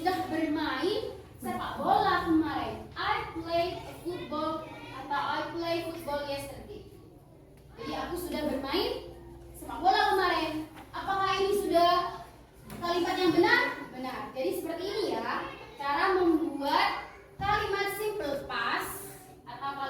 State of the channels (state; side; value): identical; both; correlation 1.00